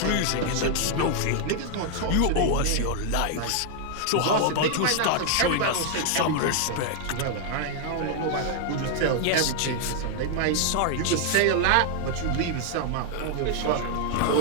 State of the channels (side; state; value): both; different; correlation 0.00